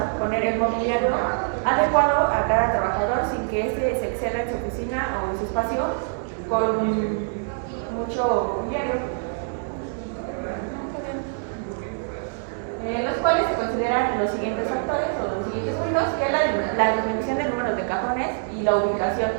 poner el mobiliario adecuado a cada trabajador sin que éste se exceda en su oficina o en su espacio con mucho mobiliario. Los cuales se consideran los siguientes factores o los siguientes puntos, que es la disminución del número de cajones y la ubicación,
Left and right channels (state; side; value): silent; left; 62 dB below the other